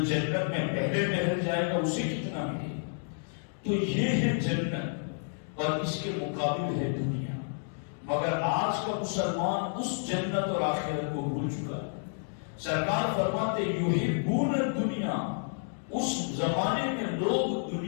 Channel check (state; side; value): silent; right; digital silence